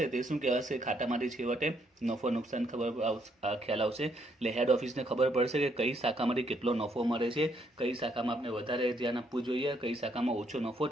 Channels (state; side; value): normal; both; correlation 0.72